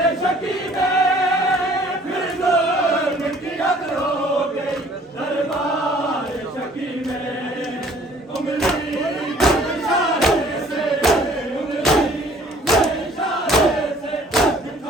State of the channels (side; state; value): both; normal; correlation 0.55